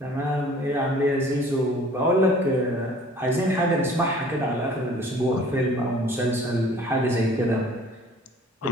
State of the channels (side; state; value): both; normal; correlation 0.51